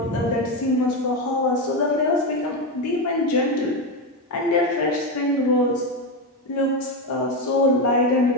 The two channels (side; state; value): both; normal; correlation 0.12